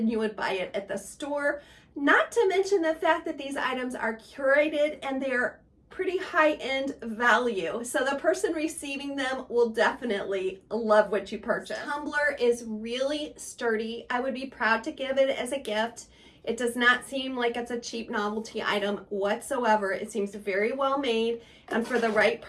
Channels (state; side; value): identical; both; correlation 1.00